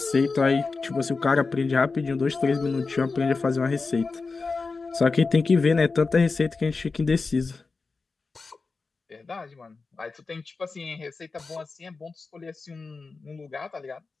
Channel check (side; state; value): right; quieter; 4.2 dB